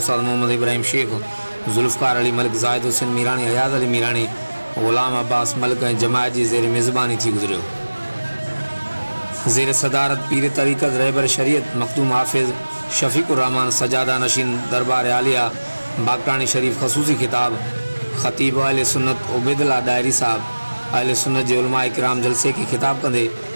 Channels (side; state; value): both; inverted; correlation -1.00